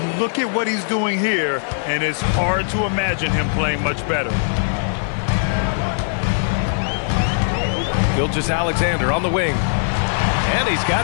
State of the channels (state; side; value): silent; right; 66 dB below the other